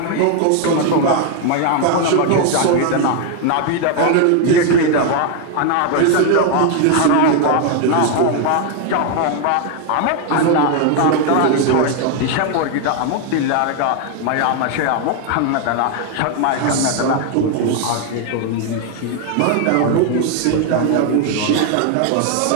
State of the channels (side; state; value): both; different; correlation 0.01